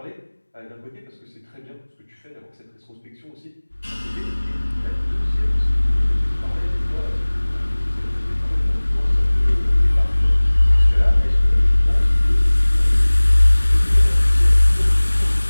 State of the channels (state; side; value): inverted; both; correlation -1.00